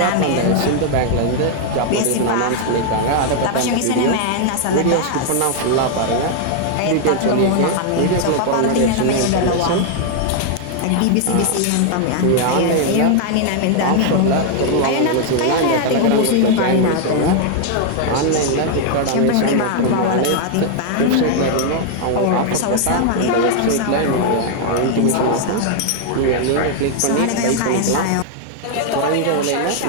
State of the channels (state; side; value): different; both; correlation 0.00